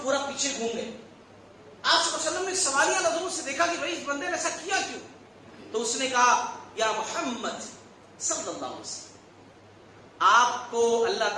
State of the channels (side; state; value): both; identical; correlation 1.00